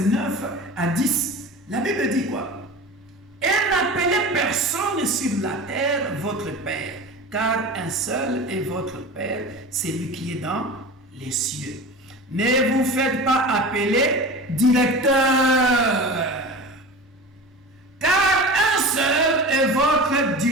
9 à 10. La Bible dit quoi? Et n'appelez personne sur la terre votre Père, car un seul est votre Père, c'est lui qui est dans les cieux. Ne vous faites pas appeler directeur, car un seul est votre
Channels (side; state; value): both; normal; correlation 0.33